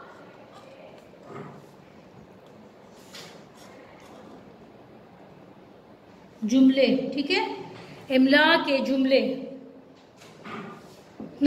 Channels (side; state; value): both; identical; correlation 1.00